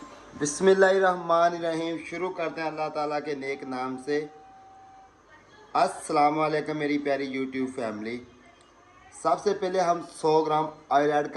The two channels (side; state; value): both; identical; correlation 1.00